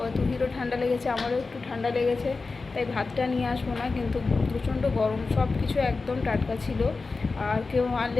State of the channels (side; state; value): right; quieter; 4.0 dB